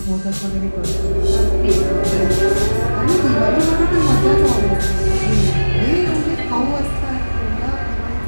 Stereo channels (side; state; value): both; inverted; correlation -1.00